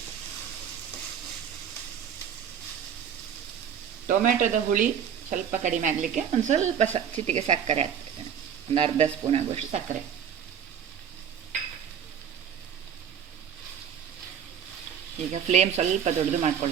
ಟೊಮೆಟೊದ ಹುಳಿ ಸ್ವಲ್ಪ ಕಡಿಮೆ ಆಗಲಿಕ್ಕೆ ಒಂದು ಸ್ವಲ್ಪ ಚಿಟಿಕೆ ಸಕ್ಕರೆ ಹಾಕ್ತಾ ಇದ್ದೇನೆ. ಒಂದು ಅರ್ಧ ಸ್ಪೂನ್ ಆಗುವಷ್ಟು ಸಕ್ಕರೆ. ಈಗ ಫ್ಲೇಮ್ ಸ್ವಲ್ಪ ದೊಡ್ಡದು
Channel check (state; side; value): quieter; left; 8.2 dB